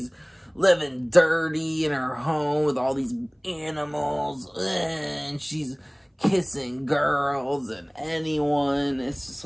living dirty in her home with all these animals. And she's kissing girls and anyone. It's just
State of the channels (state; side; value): identical; both; correlation 1.00